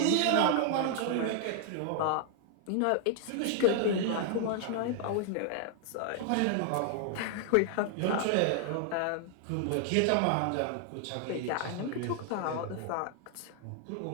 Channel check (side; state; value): both; different; correlation 0.00